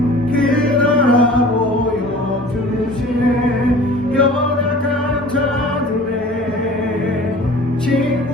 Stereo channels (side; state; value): both; normal; correlation 0.44